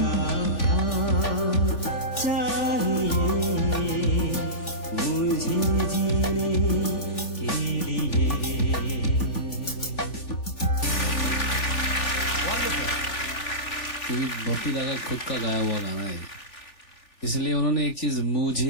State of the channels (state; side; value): late; right; 3.4 ms